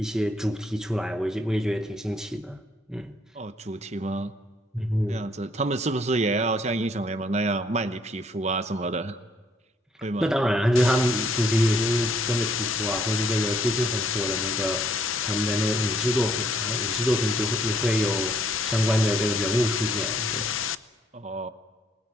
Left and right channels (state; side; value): normal; both; correlation 0.66